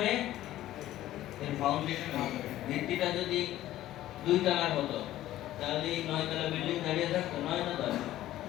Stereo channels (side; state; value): right; quieter; 14.1 dB